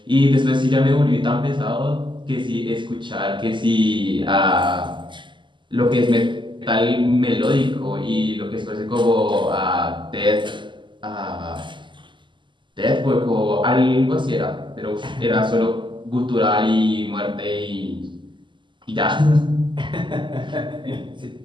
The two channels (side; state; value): left; late; 0.23 ms